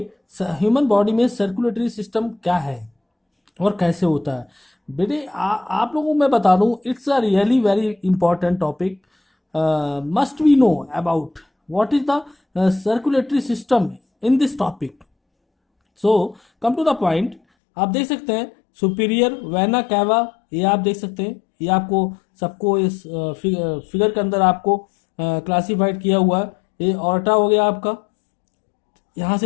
ह्यूमन बॉडी में सर्कुलेटरी सिस्टम क्या है और कैसे होता है। बेटे आप लोगों को मैं बता दूं, it's a really very important topic. Must we know about what is the circulatory system in this topic. So come to the point. आप देख सकते हैं सुपीरियर वेना कैवा, ये आप देख सकते हैं। ये आपको सबको इस फिगर के अंदर आपको क्लासिफाइड किया हुआ है। ये ऑर्टा हो गया आपका। यहाँ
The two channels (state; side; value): drops out; right; at 17.4 s